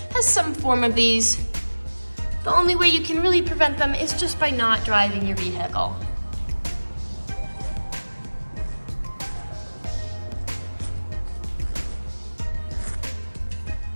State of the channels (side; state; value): both; inverted; correlation -1.00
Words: has some form of these. The only way you can really prevent them is just by not driving your vehicle.